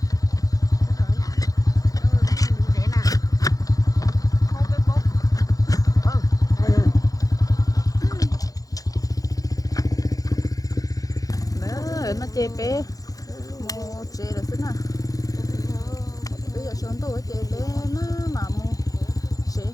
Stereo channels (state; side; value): late; right; 0.17 ms